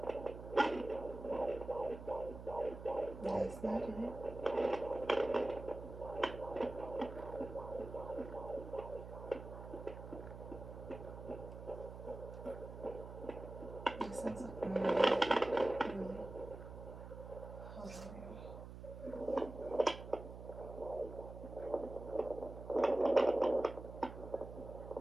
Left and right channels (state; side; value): noise; right; hum, 11 dB below the sound